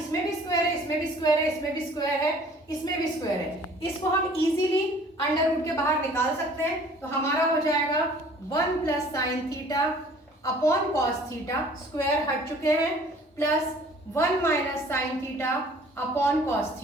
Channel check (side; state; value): both; normal; correlation 0.52